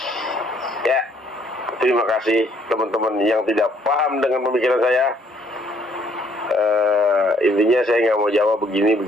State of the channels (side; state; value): both; normal; correlation 0.65